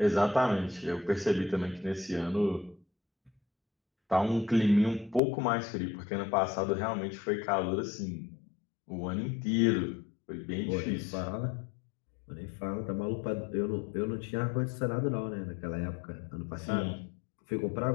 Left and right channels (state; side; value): drops out; right; at 5.2 s